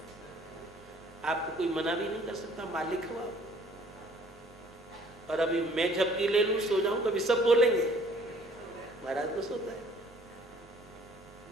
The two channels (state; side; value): normal; both; correlation 0.56